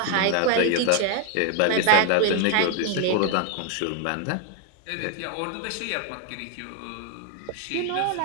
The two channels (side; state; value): both; different; correlation 0.01